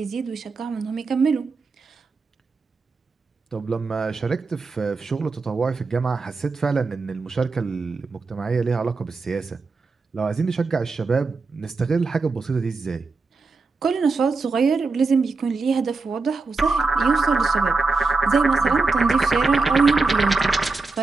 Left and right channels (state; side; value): quieter; left; 4.0 dB